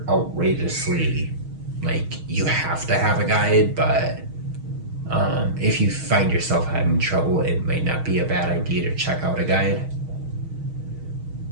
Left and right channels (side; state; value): left; late; 6.3 ms